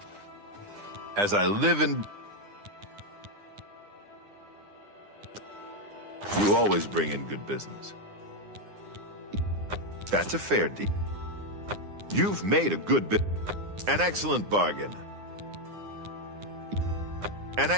As I live in... You always bring in good business. That's a fair deal. You've made a good bit. An excellent bargain. An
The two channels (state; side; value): late; left; 9.8 ms